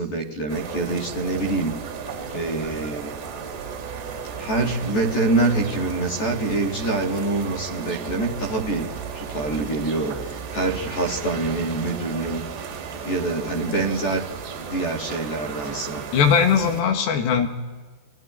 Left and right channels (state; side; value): late; right; 14 ms